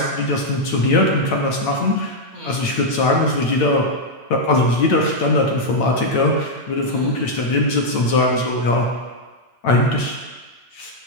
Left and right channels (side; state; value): right; late; 8.9 ms